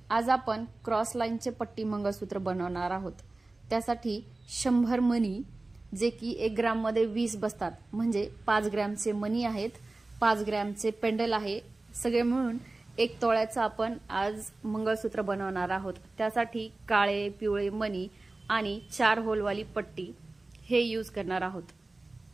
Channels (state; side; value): quieter; left; 3.1 dB